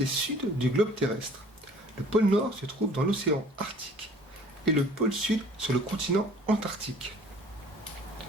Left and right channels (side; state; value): both; normal; correlation 0.50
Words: sud du globe terrestre. Le pôle nord se trouve dans l'océan Arctique et le pôle sud sur le continent Antarctique.